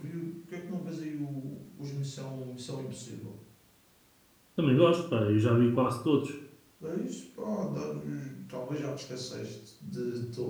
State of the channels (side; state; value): both; identical; correlation 1.00